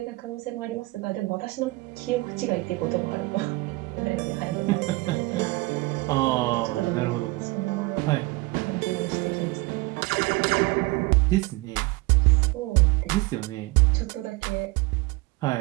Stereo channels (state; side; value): quieter; left; 22.7 dB